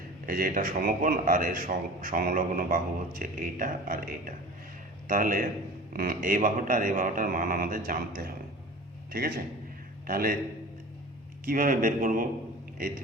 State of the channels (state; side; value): normal; both; correlation 0.39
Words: এই যে এটা সমকোণ, আর এর সংলগ্ন বাহু হচ্ছে এইটা আর এইটা। তাহলে এই বাহুটা আর এই বাহুটার মান আমাদের জানতে হবে, ঠিক আছে। তাহলে কিভাবে বের করব এই